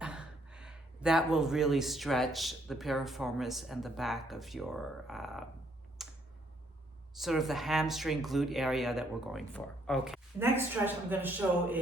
that will really stretch the piriformis and the back of your, sort of the hamstring glute area that we're going for. Okay. Next stretch I'm going to show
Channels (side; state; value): both; normal; correlation 0.69